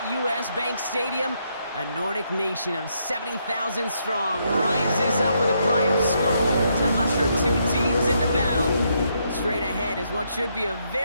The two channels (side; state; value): both; inverted; correlation -0.76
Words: U.S. Bank Stadium, a Nordic nation of 70,000 strong rises up with a cry of Skål to usher two teams into battle. Straight ahead is what should be a